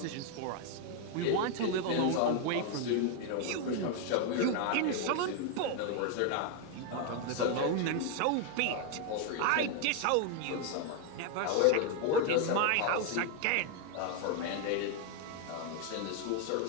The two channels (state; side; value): different; both; correlation 0.00